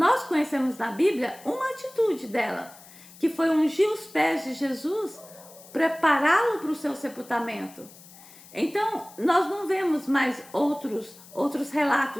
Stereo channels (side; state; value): left; noise; hiss, 21 dB below the sound